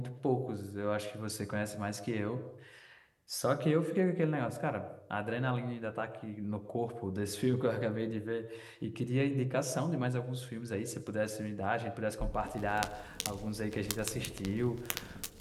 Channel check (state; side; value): identical; both; correlation 1.00